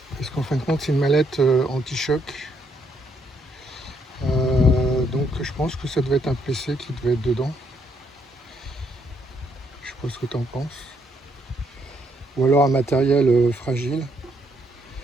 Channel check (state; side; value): normal; both; correlation 0.73